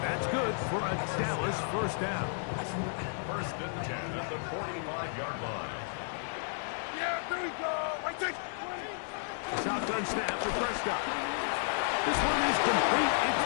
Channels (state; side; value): silent; right; digital silence